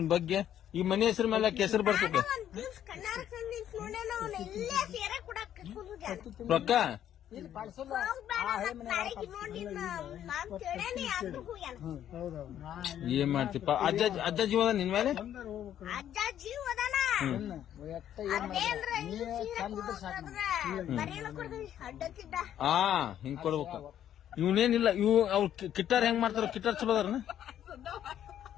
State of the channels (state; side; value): quieter; right; 10.7 dB